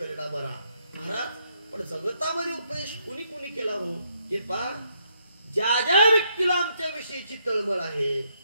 बरा. महाराज पण जगतामध्ये उपदेश कुणी कुणी केला हो हे पहा. ज्या ज्या व्यक्तीला आमच्या विषयीची तळमळ आहे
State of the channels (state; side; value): inverted; both; correlation -0.74